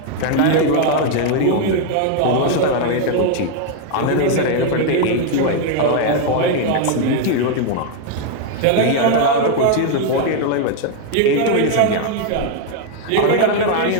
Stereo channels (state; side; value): different; both; correlation 0.00